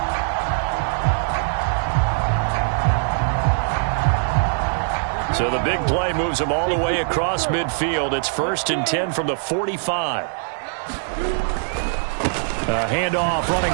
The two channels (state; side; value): silent; left; 64 dB below the other